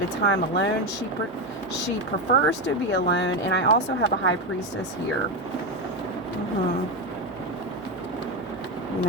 of time alone. She prefers to be alone. And I also have a High Priestess here. You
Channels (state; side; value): normal; both; correlation 0.11